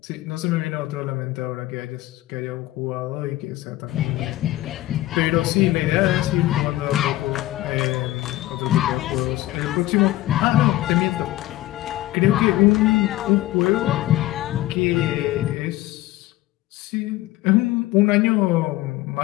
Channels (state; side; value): quieter; right; 16.4 dB